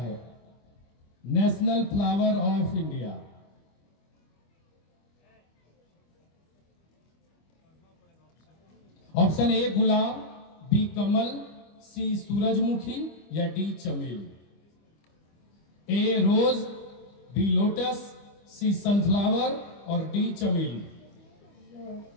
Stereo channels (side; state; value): right; late; 25 ms